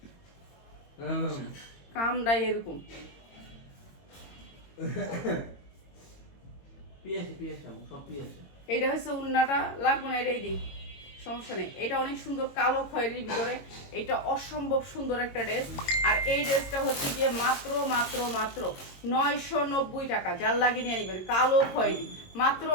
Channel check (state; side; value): late; right; 22 ms